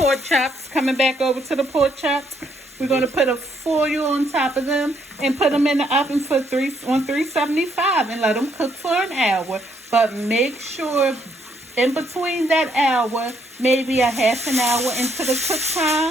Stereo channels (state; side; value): normal; both; correlation 0.71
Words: chops. Coming back over to the pork chops, we're going to put a foil on top of them and put them in the oven for 375 and let them cook for an hour. But make sure in between that hour, maybe a half an hour into the cook